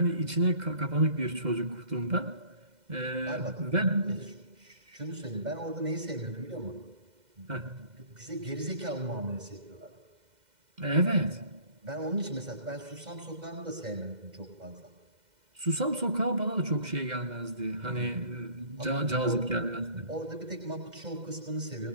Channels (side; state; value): left; late; 2.0 ms